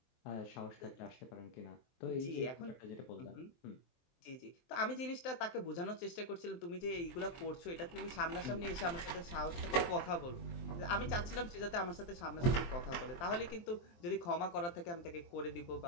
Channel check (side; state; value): right; late; 23 ms